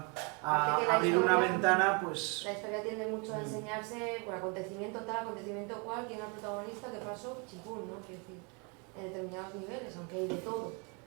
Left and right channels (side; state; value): left; quieter; 33.2 dB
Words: Porque la abrir una historia- ventana, pues... La historia tiende mucho a enseñarse por acontecimiento tal, acontecimiento cual, quién era el protagonista, qué pasó, chipún, ¿no? Quiero decir, en determinados niveles, aunque hay de todo.